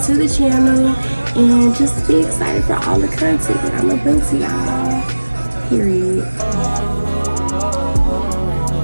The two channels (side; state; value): both; inverted; correlation -1.00